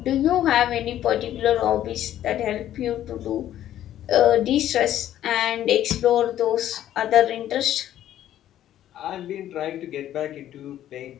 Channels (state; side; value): quieter; right; 12.0 dB